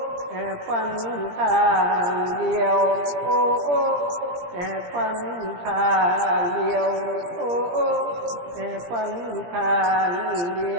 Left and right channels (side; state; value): left; late; 17 ms